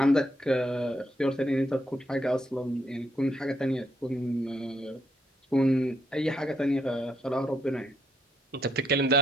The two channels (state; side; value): normal; both; correlation 0.75